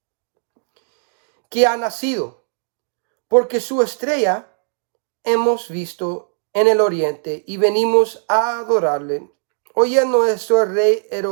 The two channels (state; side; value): silent; left; digital silence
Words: Que ha nacido, porque su estrella hemos visto en el oriente y venimos a adorarle. Oyendo esto, el rey